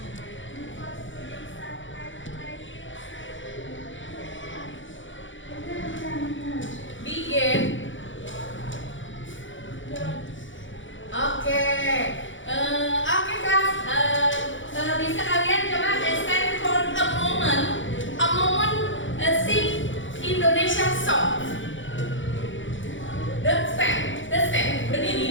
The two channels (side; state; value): right; late; 0.56 ms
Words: Begin. Oke, kelas. Bisa kalian coba stand for a moment, sing Indonesia song. The stand,